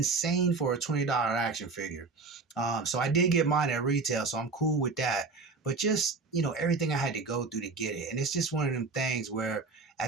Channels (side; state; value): left; quieter; 4.0 dB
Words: for a $20 action figure. So I did get mine at retail, so I'm cool with that. But just everything I had to go through to get it, and it's just one of them things where